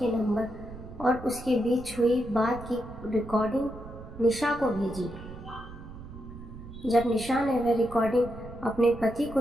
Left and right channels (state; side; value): noise; right; rumble, 14 dB below the sound